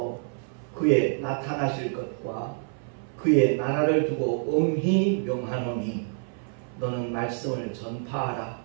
그의 나타나실 것과 그의 나라를 두고 엄히 명하노니 너는 말씀을 전파하라.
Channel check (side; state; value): left; silent; 60 dB below the other